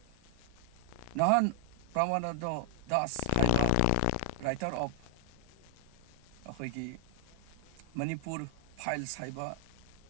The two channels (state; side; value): different; both; correlation 0.00